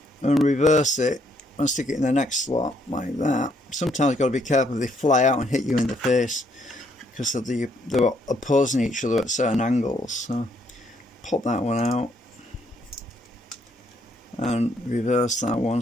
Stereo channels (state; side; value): normal; both; correlation 0.71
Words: and reverse it and stick it in the next slot like that, sometimes you've got to be careful, they fly out and hit you in the face because of they're opposing each other at certain angles. So pop that one out and reverse that one,